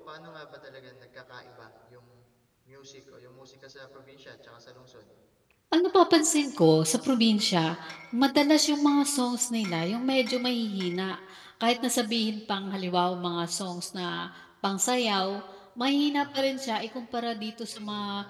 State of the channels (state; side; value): identical; both; correlation 1.00